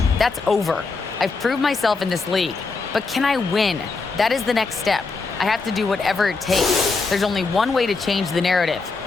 That's over. I've proved myself in this league. But can I win? That is the next step. I have to do whatever it takes. There's only one way to change the narrative.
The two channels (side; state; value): right; quieter; 4.2 dB